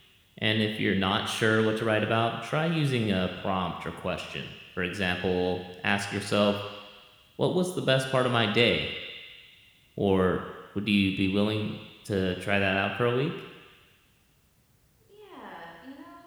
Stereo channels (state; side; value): identical; both; correlation 1.00